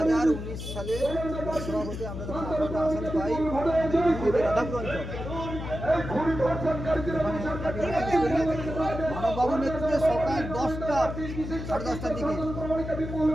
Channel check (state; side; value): noise; left; hum, 7 dB below the sound